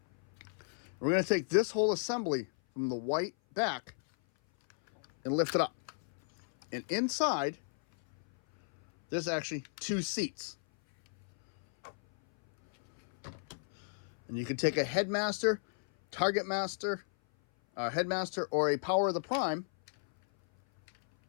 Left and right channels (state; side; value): silent; right; 55 dB below the other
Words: We're going to take this whole assembly from the white back and lift it up. And inside, there's actually two seats. And you can take a Headmaster, Target Master, Headmaster, or a Power of the Prime